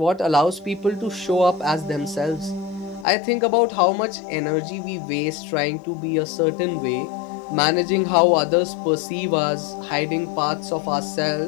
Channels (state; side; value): drops out; right; at 3.1 s